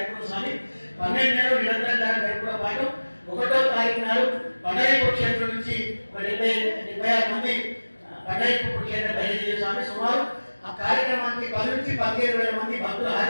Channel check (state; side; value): inverted; both; correlation -1.00